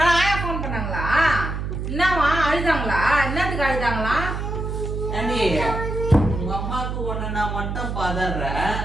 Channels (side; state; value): right; noise; hum, 4 dB below the sound